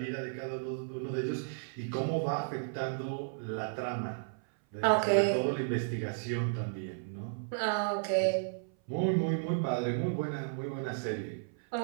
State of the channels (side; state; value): left; silent; 55 dB below the other